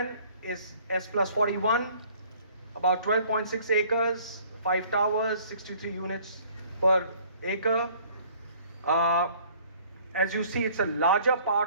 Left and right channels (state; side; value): inverted; both; correlation -0.56